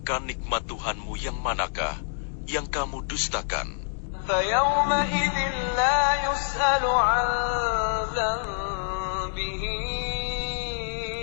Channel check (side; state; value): right; silent; digital silence